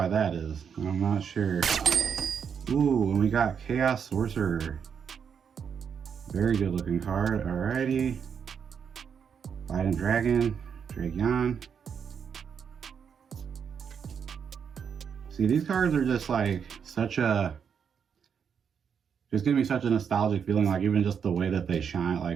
that is. I'm not sure. Ooh, and we got Chaos Sorcerer. Very good looking card. Alrighty. Fighting Dragon, Dragon. See, these cards are just such a, just give me such a nostalgic feeling, even just the way that they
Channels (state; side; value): quieter; left; 7.1 dB